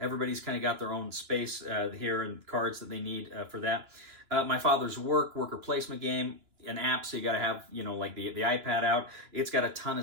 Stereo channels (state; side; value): late; left; 2.9 ms